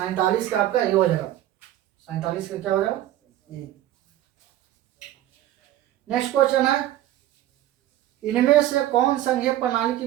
का आपका ये हो जाएगा। 47 का क्या हो जाएगा ये। नेक्स्ट क्वेश्चन है इनमें से कौन संघीय प्रणाली की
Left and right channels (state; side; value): quieter; left; 13.6 dB